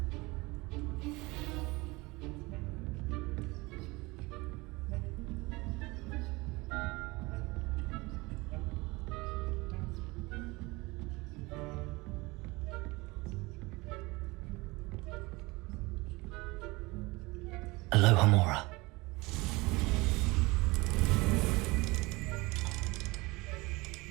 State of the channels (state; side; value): quieter; left; 23.4 dB